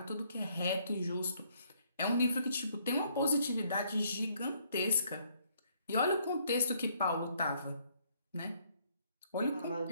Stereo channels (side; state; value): both; inverted; correlation -0.67